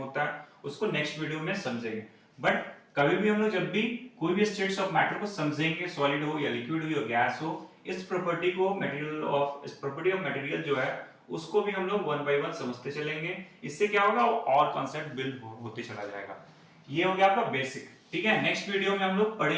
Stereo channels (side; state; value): both; identical; correlation 1.00